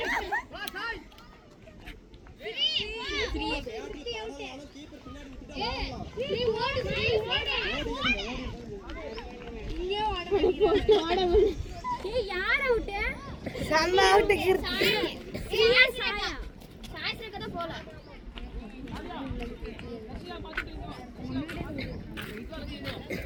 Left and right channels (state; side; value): identical; both; correlation 1.00